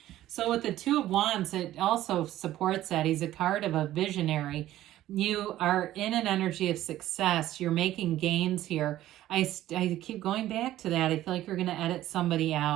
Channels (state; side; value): quieter; left; 14.0 dB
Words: So with the Two of Wands, it also supports that. He's a card of a visionary. You are in an energy of success. You're making gains here. I keep going back to that. I feel like you're going to edit somebody